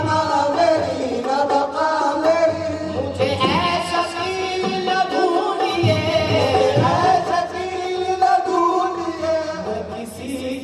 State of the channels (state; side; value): identical; both; correlation 1.00